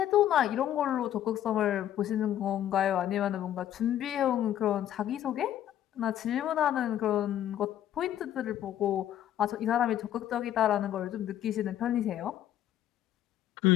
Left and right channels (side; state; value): right; quieter; 11.4 dB